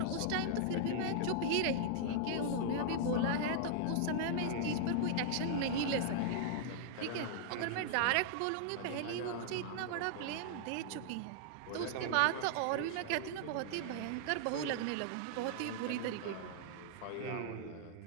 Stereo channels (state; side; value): different; both; correlation -0.01